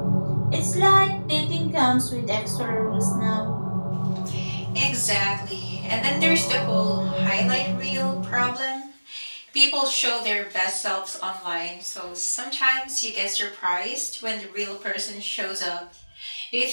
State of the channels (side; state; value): both; inverted; correlation -1.00